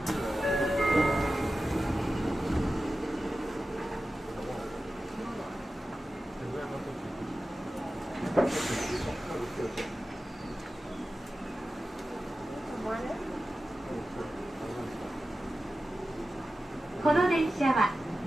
この電車は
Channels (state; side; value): normal; both; correlation 0.94